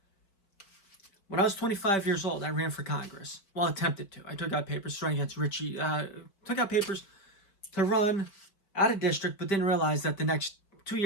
When I was 25 years old, I ran for Congress. Well, attempted to. I took out papers to run against Richie. Took out papers to run out of district, but didn't realize that the next 2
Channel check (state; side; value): late; right; 5.1 ms